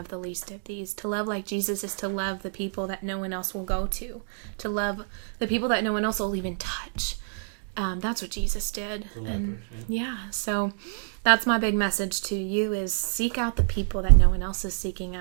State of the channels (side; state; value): left; silent; digital silence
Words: the least of these. To love like Jesus is to love the people that no one else will go to. To love the people that no one else will even touch. That's what Jesus did. And so that's my big message to you is seek out the people that no one else is seeking